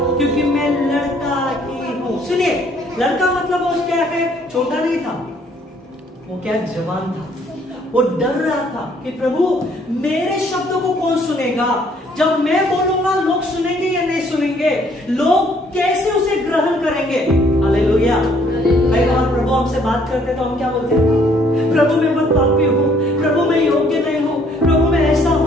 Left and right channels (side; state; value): both; normal; correlation 0.63